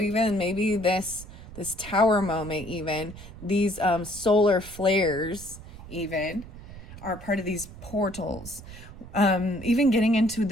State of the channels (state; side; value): noise; right; rumble, 15 dB below the sound